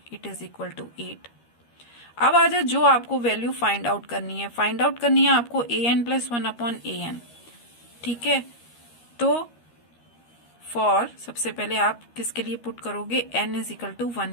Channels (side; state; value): right; late; 13 ms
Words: इट इज इक्वल टू 8। अब आ जाए जो आपको वैल्यू फाइंड आउट करनी है, फाइंड आउट करनी है आपको an प्लस 1 अपॉन an। ठीक है, तो फॉर सबसे पहले आप किसके लिए पुट करोगे n इज इक्वल टू